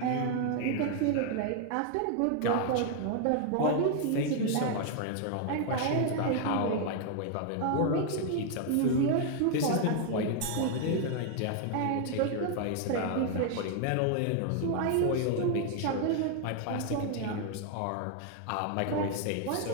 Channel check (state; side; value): different; both; correlation 0.00